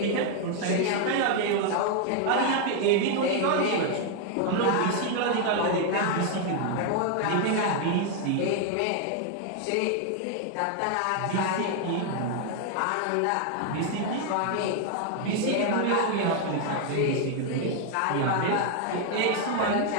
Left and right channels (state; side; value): different; both; correlation 0.01